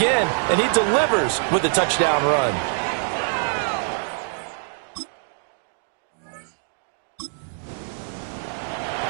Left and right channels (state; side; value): silent; left; digital silence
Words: and he delivers with a touchdown run.